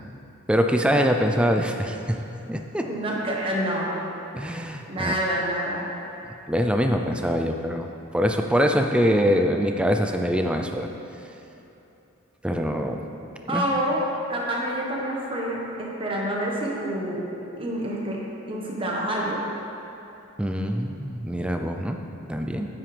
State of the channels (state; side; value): normal; both; correlation 0.61